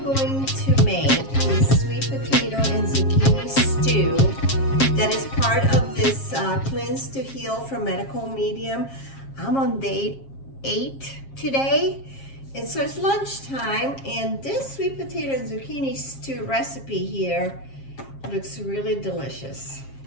going to make this sweet potato and zucchini stew that is part of this Cleanse to Heal from Medical Medium. I'm on day 8 today, and so it's lunchtime, and this sweet potato and zucchini stew recipe here looks really delicious.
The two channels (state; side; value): late; right; 7.4 ms